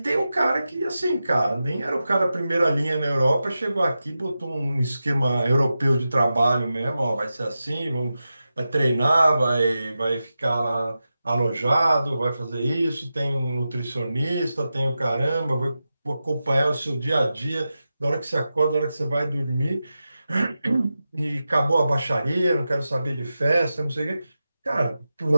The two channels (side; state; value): both; inverted; correlation -0.92